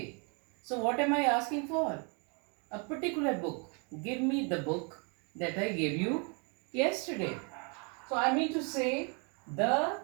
So what am I asking for? A particular book. Give me the book that I gave you yesterday. So I mean to say, the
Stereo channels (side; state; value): left; quieter; 35.7 dB